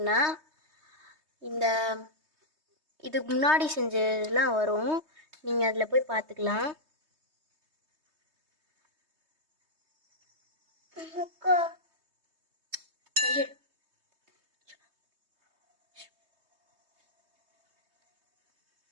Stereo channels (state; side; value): late; left; 3.2 ms